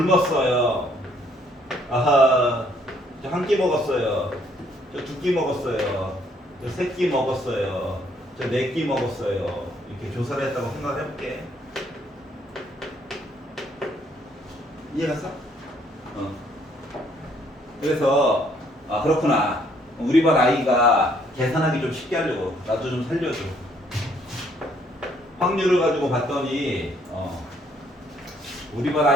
아하, 저 한 끼 먹었어요. 저 2끼 먹었어요. 저 3끼 먹었어요. 저 4끼 먹었어요. 이렇게 조사를 했다고 생각을 해볼게. 이해갔어? 그래서 그렇구나. 우리 반 아이가 계산하기 좀 쉽게 하려고 나도 좀 살려줘. 확률을 가지고 봤더니 우리 반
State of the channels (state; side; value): normal; both; correlation 0.66